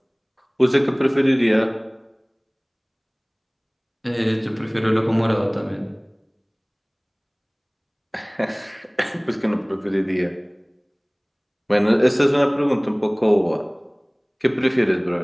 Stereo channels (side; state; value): both; identical; correlation 1.00